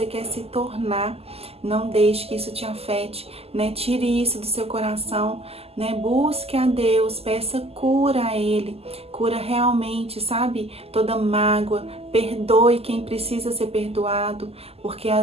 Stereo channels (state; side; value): late; left; 0.29 ms